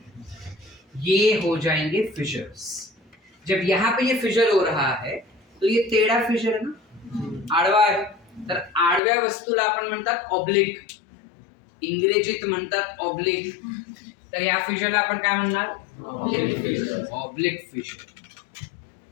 ये हो जाएंगे फिशर्स। जब यहाँ पे ये फिशर हो रहा है तो ये टेढ़ा फिशर है ना, आडवा आहे, तर आडव्या वस्तूला आपण म्हणतात ऑब्लिक, इंग्रजीत म्हणतात ऑब्लिक, तर या फिशरला आपण काय म्हणणार? ऑब्लिक फिशर,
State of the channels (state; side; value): drops out; right; at 9.0 s